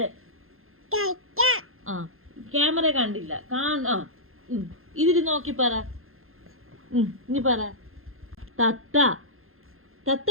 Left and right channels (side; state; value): left; late; 0.61 ms